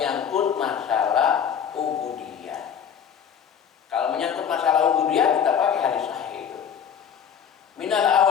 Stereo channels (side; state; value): right; quieter; 8.0 dB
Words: masalah ubudiyah. Kalau menyangkut masalah ubudiyah kita pakai hadis sahih itu. Minal